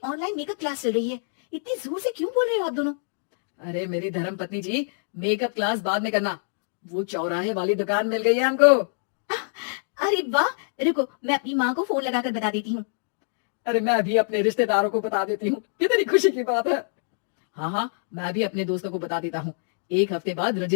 ऑनलाइन मेकअप क्लास चल रही है। इतनी जोर से क्यों बोल रहे हो आप दोनों? अरे मेरी धर्म पत्नी जी, मेकअप क्लास बाद में करना। वो चौराहे वाली दुकान मिल गई है हमको। आह, अरे वाह! रुको, मैं अपनी माँ को फोन लगाकर बता देती हूँ। अरे मैं भी अपने रिश्तेदारों को बता देती हूँ, कितनी खुशी की बात है। हाँ हाँ, मैं भी अपने दोस्तों को बता देता हूँ। 1 हफ्ते बाद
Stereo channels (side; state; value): right; silent; digital silence